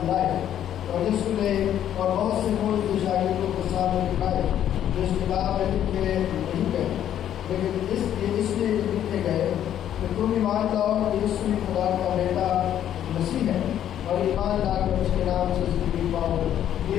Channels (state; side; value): quieter; right; 10.6 dB